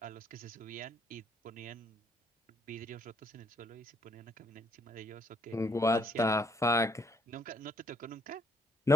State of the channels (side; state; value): both; normal; correlation 0.67